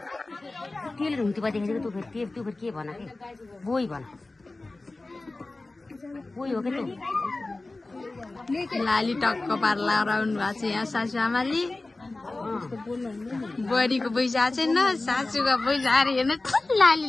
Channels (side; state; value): right; quieter; 3.1 dB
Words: तेल हुन्थ्यो देखेको तँ फेरि त्यो फेरि के भन के बोई भन बोई हो के लाली टक्क पार लगाउनु भएको छ यहाँ सासू आमाले बुहारीको पैसा छैन सासूको पैसा आएर हेर्नु लाली